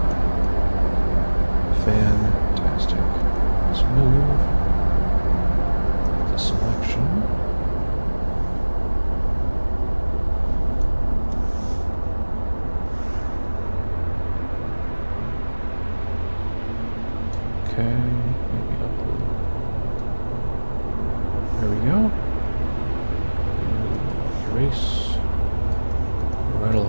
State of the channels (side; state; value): both; inverted; correlation -1.00